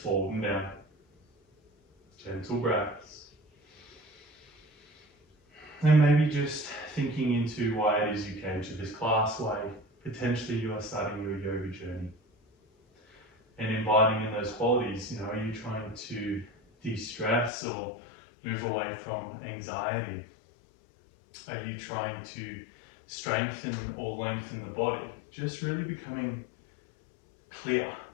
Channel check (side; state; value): right; drops out; at 17.5 s